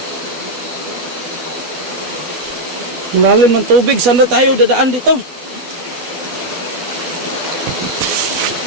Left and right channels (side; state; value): left; late; 12 ms